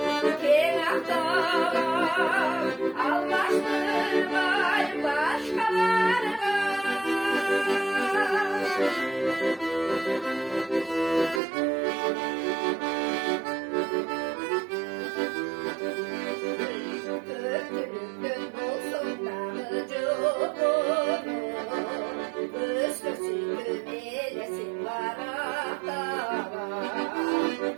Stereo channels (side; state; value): left; drops out; at 11.4 s